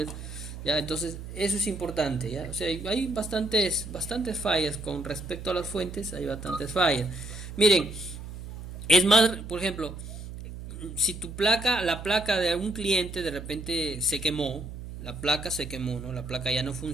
¿ya? Entonces, eso es importante, ¿ya? O sea, hay bastantes fallas con respecto a las fuentes, hay bastantes fallas. Miren, es más, por ejemplo, si la placa de algún cliente de repente se quemó, la placa se quemó, ¿no? La placa ya no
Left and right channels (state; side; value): noise; right; hum, 10 dB below the sound